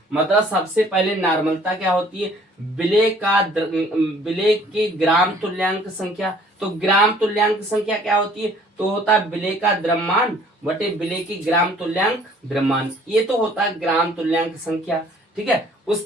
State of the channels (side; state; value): both; normal; correlation 0.56